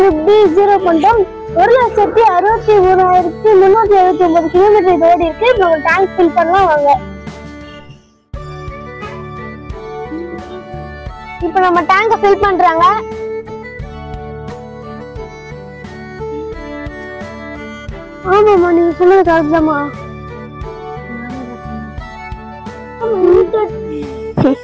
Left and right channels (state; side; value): identical; both; correlation 1.00